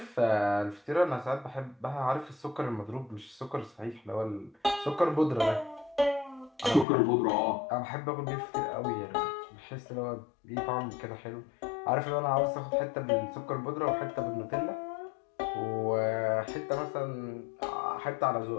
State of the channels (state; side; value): drops out; right; at 6.9 s